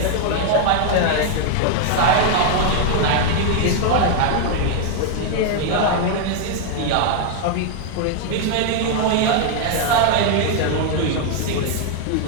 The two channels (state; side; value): different; both; correlation 0.00